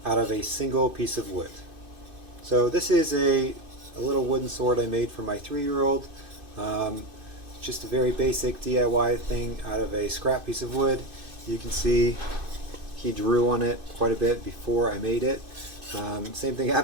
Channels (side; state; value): left; late; 2.5 ms